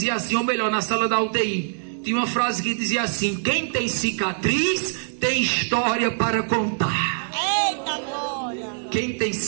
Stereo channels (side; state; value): left; silent; digital silence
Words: assim, ou melhor, na sala da UTI, tinha uma frase que dizia assim: quem tem cicatriz tem história para contar. Eita glória. Quem tem